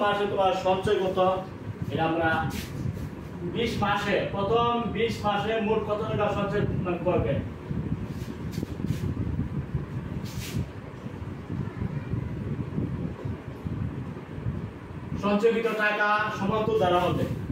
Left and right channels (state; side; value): identical; both; correlation 1.00